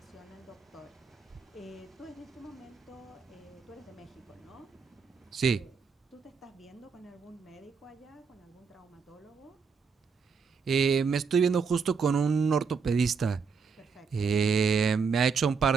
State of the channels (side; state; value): left; quieter; 5.6 dB